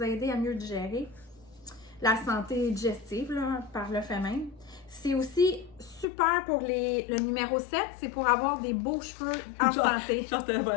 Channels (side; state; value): right; drops out; at 6.1 s